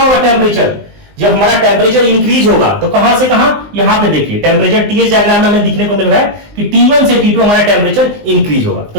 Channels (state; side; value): late; left; 19 ms